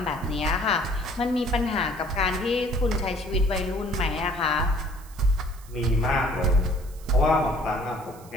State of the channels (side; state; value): right; noise; hiss, 23 dB below the sound